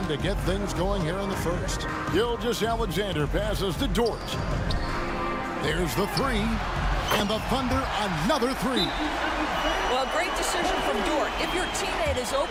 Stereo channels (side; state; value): both; identical; correlation 1.00